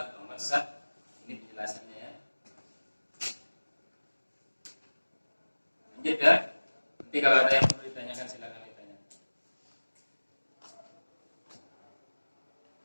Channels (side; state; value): both; inverted; correlation -1.00